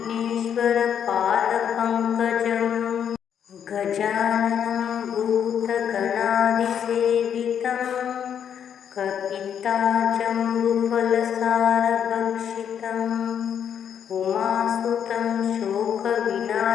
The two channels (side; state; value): right; quieter; 8.5 dB